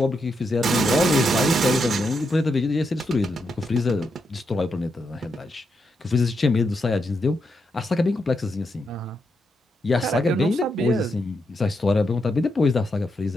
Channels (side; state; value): both; normal; correlation 0.82